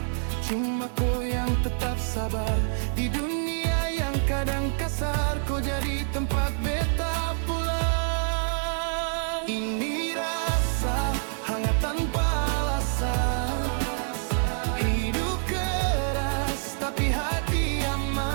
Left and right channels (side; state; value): left; silent; 60 dB below the other